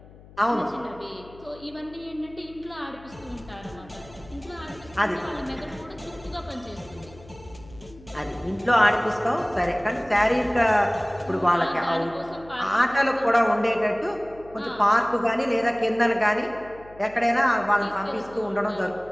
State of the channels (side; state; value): left; noise; hum, 21 dB below the sound